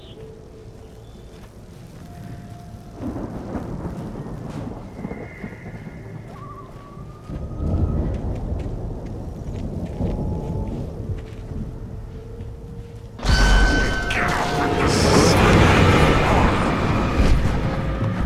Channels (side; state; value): both; identical; correlation 1.00